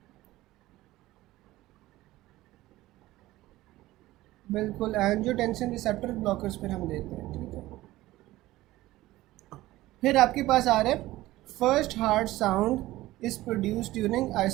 बिल्कुल, एंजियोटेंसिन रिसेप्टर ब्लॉकर्स फिर हम देते हैं, ठीक है। फिर आपके पास आ रहा है first heart sound is produce during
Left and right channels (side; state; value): left; quieter; 17.1 dB